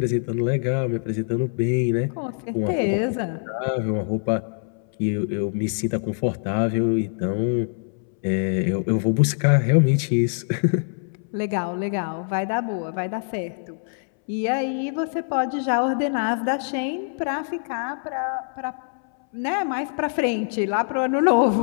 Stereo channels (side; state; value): right; silent; 63 dB below the other